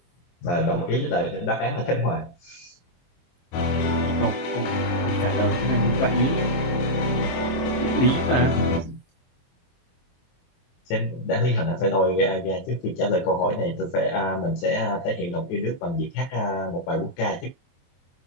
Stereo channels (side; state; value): right; late; 23 ms